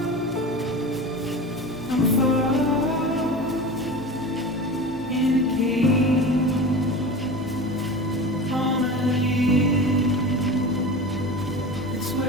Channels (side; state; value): both; normal; correlation 0.31